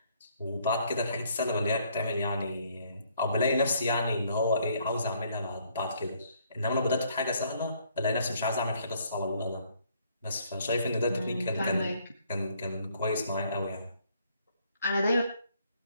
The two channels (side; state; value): both; inverted; correlation -0.66